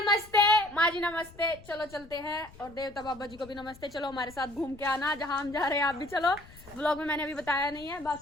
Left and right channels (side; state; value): left; noise; rumble, 21 dB below the sound